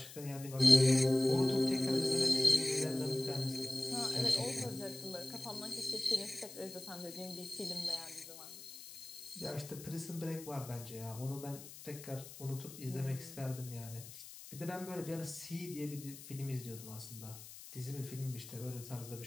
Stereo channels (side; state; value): left; noise; hiss, 14 dB below the sound